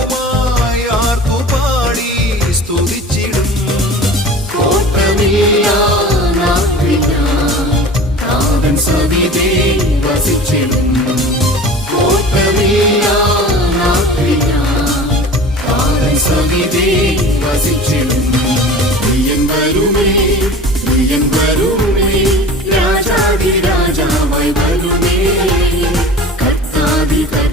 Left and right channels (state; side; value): normal; both; correlation 0.39